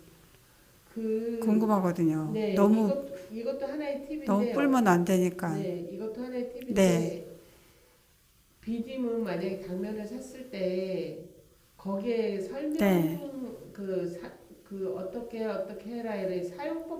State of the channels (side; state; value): both; identical; correlation 1.00